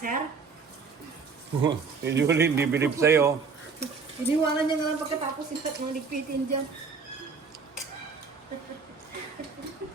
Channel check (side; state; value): left; quieter; 5.0 dB